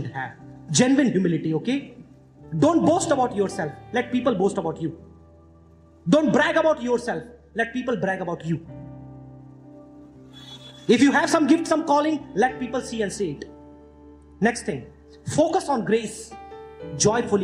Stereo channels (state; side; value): identical; both; correlation 1.00